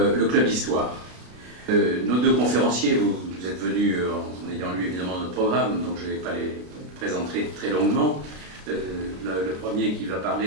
Club Histoire. Nos deux conférenciers, vous êtes venus en ayant lu évidemment notre programme, donc je ne vais pas les présenter très longuement. Le premier qui va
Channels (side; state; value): left; late; 33 ms